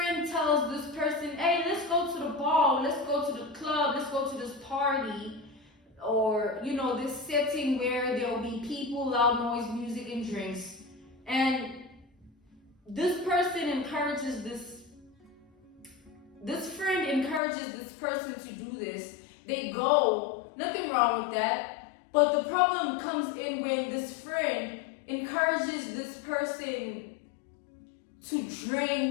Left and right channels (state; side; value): drops out; right; at 17.4 s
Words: tells this person, hey, let's go to the bar, let's go to the club, let's go to this party. Or, you know, this setting where there'll be people, loud noise, music, and drinks. And this person encourages this friend encourages this person to do this. They go, nothing wrong with that. But the problem comes in when this friend encourages this person to